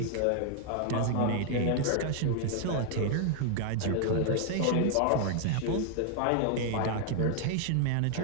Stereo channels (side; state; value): both; different; correlation 0.00